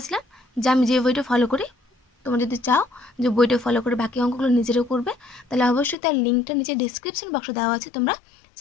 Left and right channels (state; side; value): drops out; right; at 6.0 s